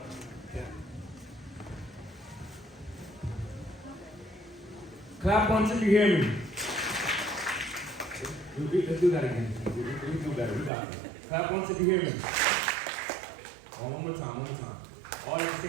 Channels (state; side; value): drops out; left; at 10.7 s